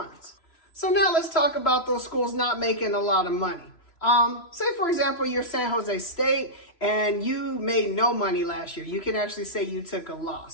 So now let's talk about those schools not making a lot of money. Say, for example, you're San Jose State and you made no money last year. You can actually say you took a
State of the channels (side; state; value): right; late; 3.0 ms